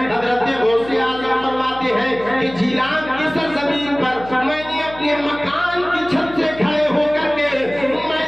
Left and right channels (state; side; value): noise; left; hum, 17 dB below the sound